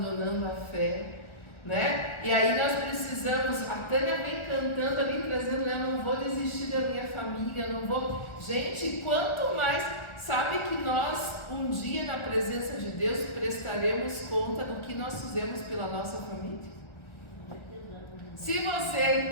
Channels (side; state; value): right; late; 1.4 ms